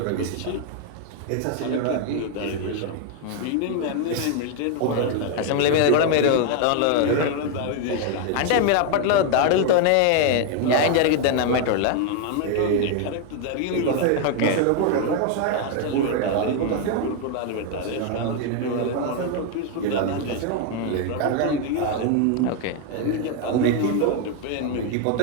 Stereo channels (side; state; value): both; different; correlation 0.01